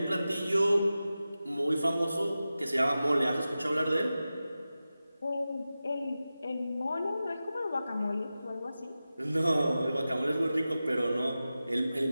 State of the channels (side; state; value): both; inverted; correlation -0.94